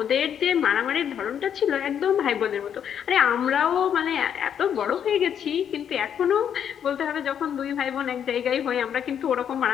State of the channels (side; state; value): right; quieter; 8.7 dB